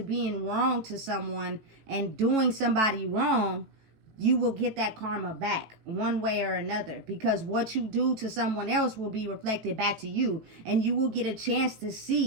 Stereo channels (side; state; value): left; late; 18 ms